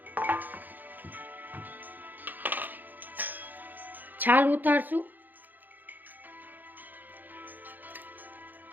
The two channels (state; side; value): late; left; 0.086 ms